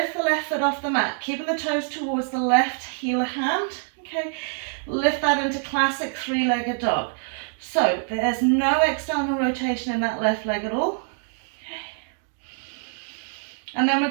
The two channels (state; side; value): silent; left; 62 dB below the other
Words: the left foot off the mat, keeping the toes towards the left heel hand. Okay, lift that into classic three-legged dog. So there's no external rotation in that left leg at all. And then we're